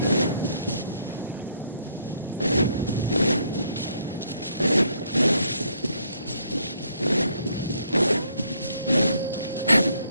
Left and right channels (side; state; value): both; inverted; correlation -0.69